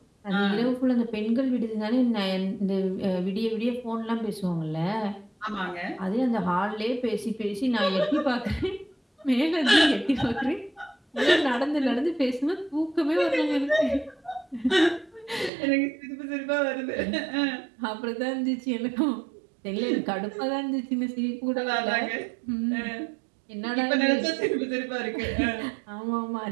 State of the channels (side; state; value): left; drops out; at 15.5 s